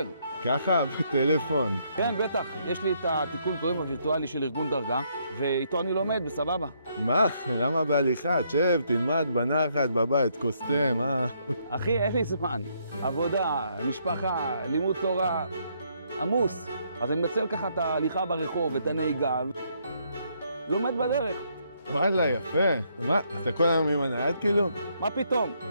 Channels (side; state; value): both; inverted; correlation -0.72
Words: ככה, בטלפון. כן, בטח. יש לי את התיקון קוראים הווירטואלי של ארגון דרגה, ואיתו אני לומד, בסבבה. מה? למה בהליכה? תשב, תלמד בנחת, בבית, כוס תה, מה? אחי, אין לי זמן. עבודה, משפחה, לימוד תורה, עמוס. אז אני מנצל ככה את ההליכה ברחוב, את הנהיגה, לומד בדרך. וואלה, יפה. מה, אתה כל היום עם הנייד כאילו? מה פתאום?